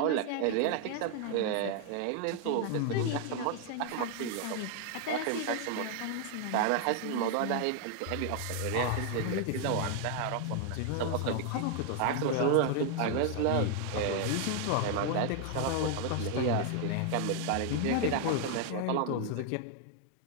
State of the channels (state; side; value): different; both; correlation 0.00